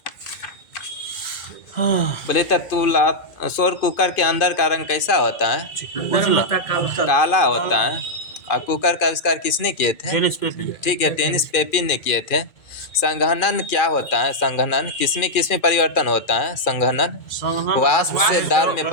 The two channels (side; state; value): right; late; 2.4 ms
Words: बोले तो सौर कुकर के अंदर का रंग कैसा होता है? उजला काला होता है। और कुकर का आविष्कार किसने किए थे? Tennis Papin. ठीक है, टेनिस पेपिन ने किए थे। संघनन क्या होता है? संघनन किसमें परिवर्तन होता है? संघनन वाष्प से द्रव में